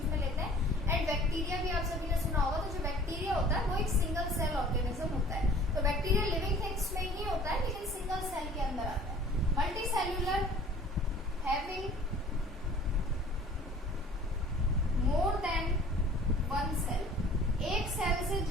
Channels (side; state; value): both; normal; correlation 0.49